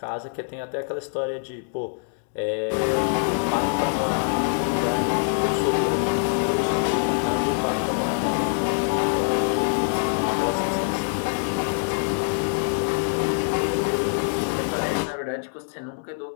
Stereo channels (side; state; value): right; silent; digital silence